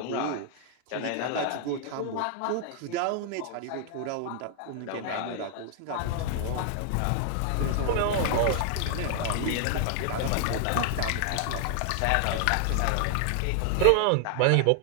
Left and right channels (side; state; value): both; different; correlation 0.00